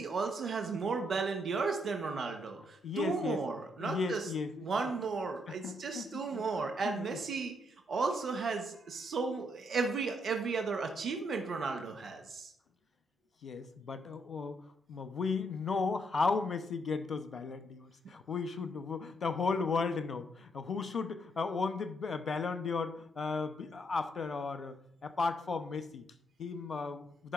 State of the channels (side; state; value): both; normal; correlation 0.74